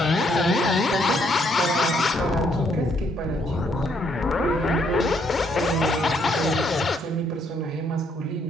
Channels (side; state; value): both; normal; correlation 0.71